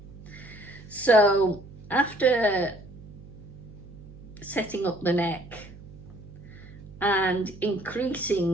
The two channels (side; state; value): right; noise; hum, 18 dB below the sound